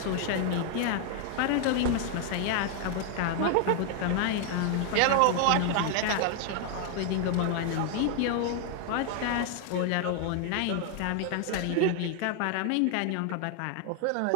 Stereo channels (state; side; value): different; both; correlation 0.00